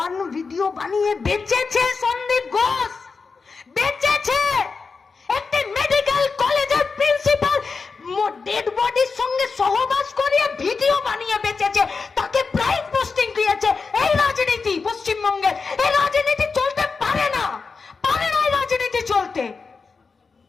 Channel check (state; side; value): quieter; right; 4.7 dB